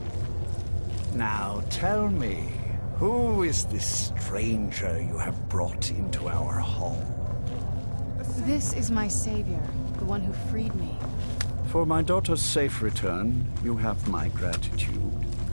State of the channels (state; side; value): inverted; both; correlation -1.00